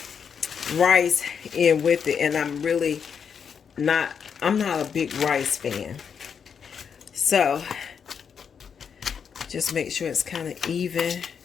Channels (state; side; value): quieter; right; 6.9 dB